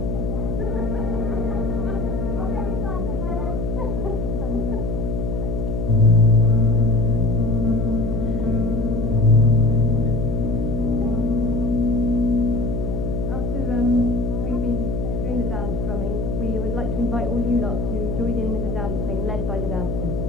We would like to invite all you lot to join in with the dancing, led by the dancers.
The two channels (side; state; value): left; noise; hum, 2 dB below the sound